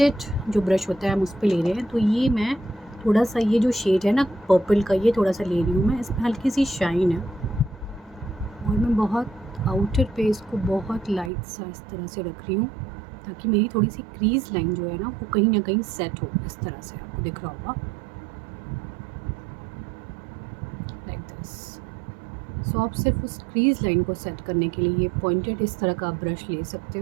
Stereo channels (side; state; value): left; drops out; at 11.3 s